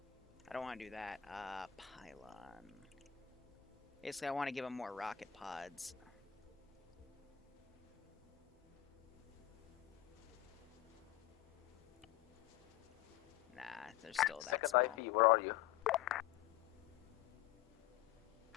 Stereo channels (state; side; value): quieter; right; 12.7 dB